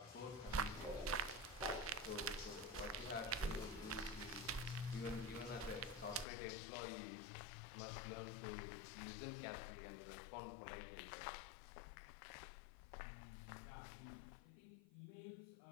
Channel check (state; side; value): drops out; right; at 6.2 s